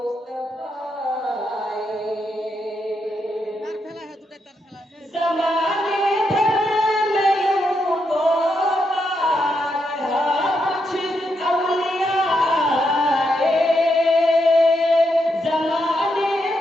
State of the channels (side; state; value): both; normal; correlation 0.81